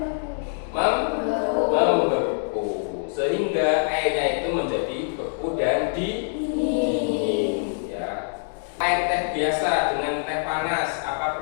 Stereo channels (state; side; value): silent; right; digital silence